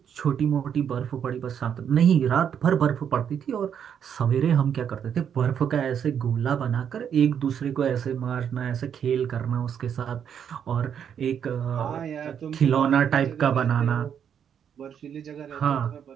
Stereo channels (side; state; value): left; quieter; 8.3 dB